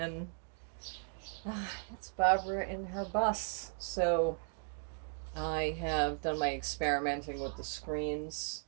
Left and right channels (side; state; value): left; silent; 53 dB below the other